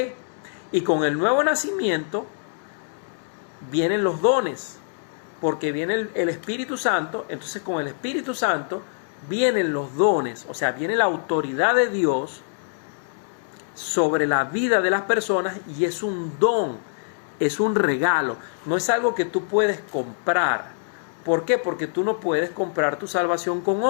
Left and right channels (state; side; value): silent; right; 60 dB below the other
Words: y con el nuevo nacimiento vienen los dones, porque viene el Espíritu Santo. Entonces con el Espíritu Santo vienen los dones, o sea, viene la autoridad de Dios sobre la vida de las personas, y es un don, es un regalo, no es algo que tú puedes comprar. ¿Por qué? Porque tú no puedes comprar tu salvación con